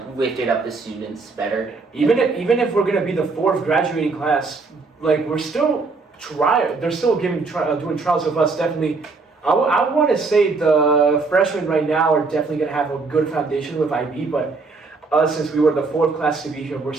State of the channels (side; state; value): left; quieter; 4.0 dB